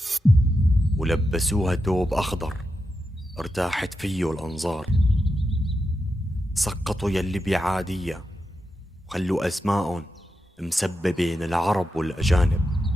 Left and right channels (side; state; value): both; normal; correlation 0.88